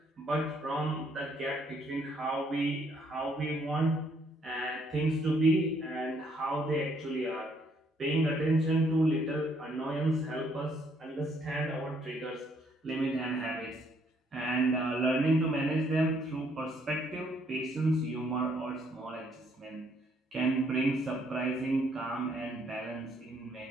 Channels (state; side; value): normal; both; correlation 0.68